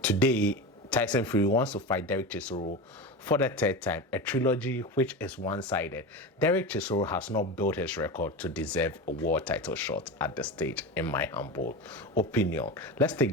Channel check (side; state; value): both; normal; correlation 0.24